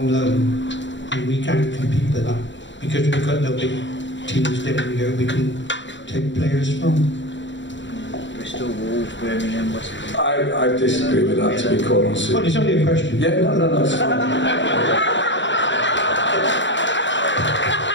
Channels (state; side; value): late; right; 0.54 ms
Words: loan, and we can't compete with that because we've got no big teams down here we can take players from? Bristol, Wolves, Birmingham, West Brom. I disagree with that, to be quite honest. Well, it's only a question. Yeah, no, it's fine.